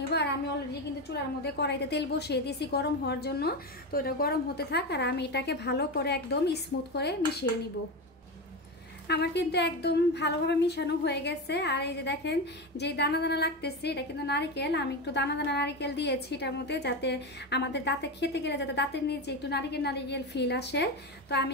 আর আমি অলরেডি কিন্তু চুলার মধ্যে কড়াইতে তেল বসিয়ে দিয়েছি গরম হওয়ার জন্য। তো এটা গরম হতে থাক আর আমি এটাকে ভালো করে একদম স্মুথ করে মিশিয়ে নিব। আমার কিন্তু একদম ভালোভাবে মিশানো হয়ে গেছে। আর এই যে দেখেন যে দানা দানা লাগতেছে এটা কিন্তু নারকেল। আমি একটু দানা দানা নারকেল দিয়েছি এটার মধ্যে, যাতে আমাদের দাঁতে খেতে গেলে যাতে দাঁতের নিচে একটু নারকেল ফিল আসে। তো আমি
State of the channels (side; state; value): both; normal; correlation 0.18